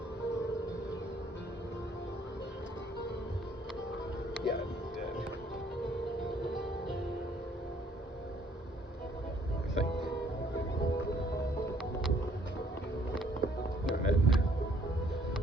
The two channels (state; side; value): normal; both; correlation 0.63